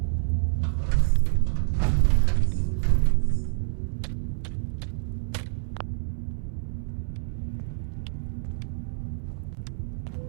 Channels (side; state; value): left; silent; digital silence